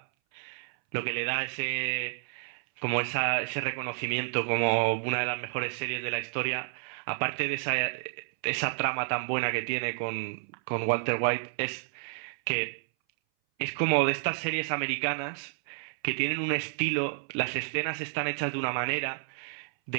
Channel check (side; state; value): left; silent; 58 dB below the other